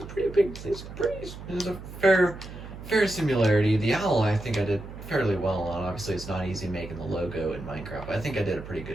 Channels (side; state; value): right; noise; hum, 12 dB below the sound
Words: pretty big, there's a fair similarity. The owl, I think I did fairly well, and obviously it's not easy making the logo in Minecraft. I think I did a pretty